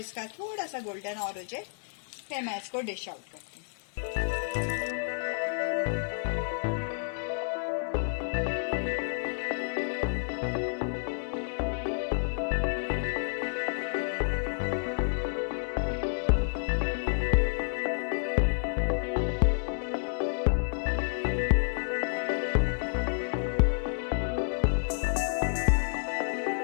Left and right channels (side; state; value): right; silent; 58 dB below the other